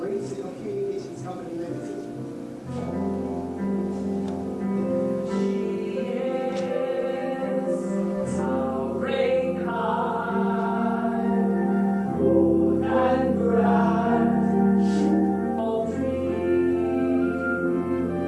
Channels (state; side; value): identical; both; correlation 1.00